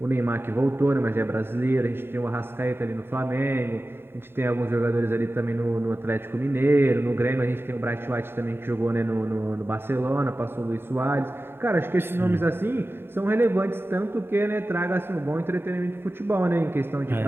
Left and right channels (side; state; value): left; late; 0.11 ms